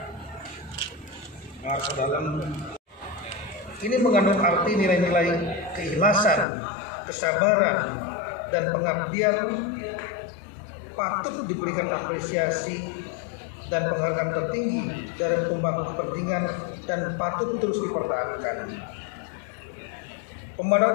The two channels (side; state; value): right; drops out; at 6.5 s